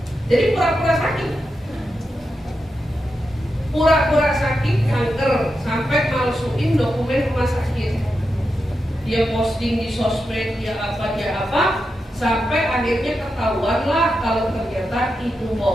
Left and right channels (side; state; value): both; normal; correlation 0.88